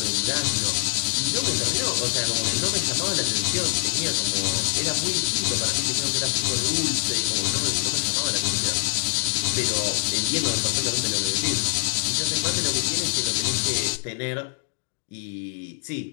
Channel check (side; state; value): right; silent; digital silence